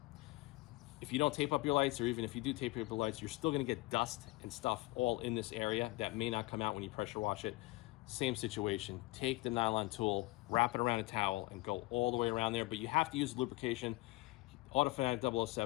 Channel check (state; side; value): quieter; right; 21.6 dB